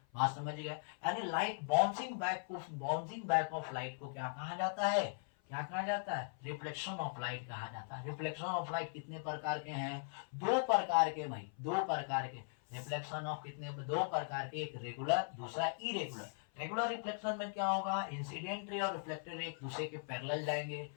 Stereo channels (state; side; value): silent; right; 52 dB below the other